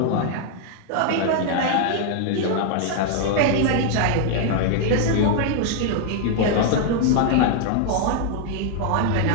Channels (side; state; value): both; different; correlation 0.00